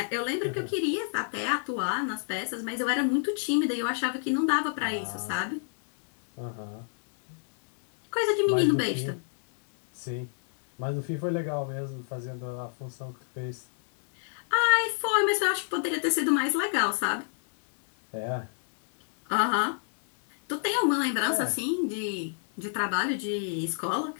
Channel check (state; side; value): silent; right; digital silence